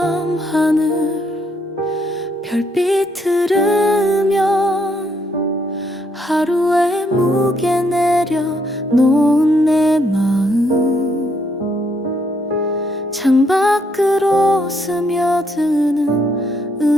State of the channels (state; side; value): normal; both; correlation 0.73